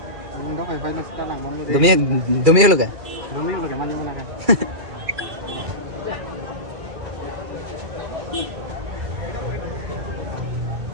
निंदो फाइ लो sekarang mau deh Demi lu kan? demi lo gimana mana kan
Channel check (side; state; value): left; late; 2.4 ms